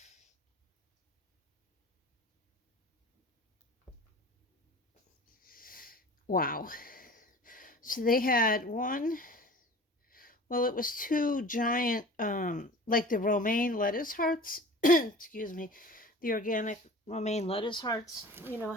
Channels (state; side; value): normal; both; correlation 0.41